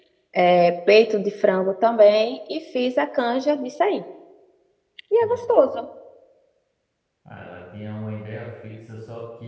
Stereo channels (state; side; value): identical; both; correlation 1.00